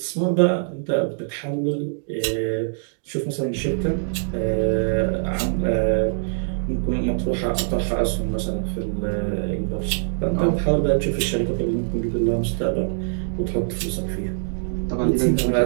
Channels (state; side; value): silent; left; digital silence